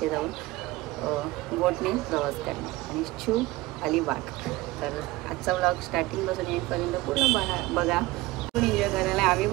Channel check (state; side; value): quieter; left; 19.7 dB